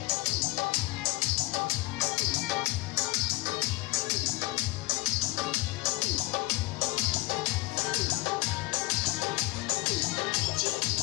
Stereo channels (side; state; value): right; quieter; 22.0 dB